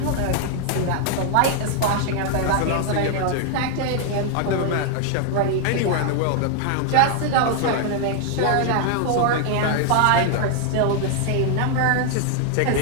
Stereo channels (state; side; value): different; both; correlation 0.00